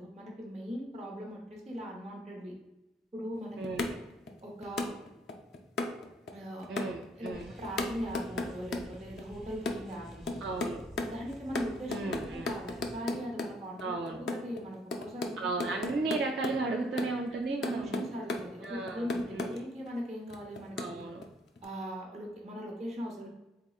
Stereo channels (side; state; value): both; normal; correlation 0.64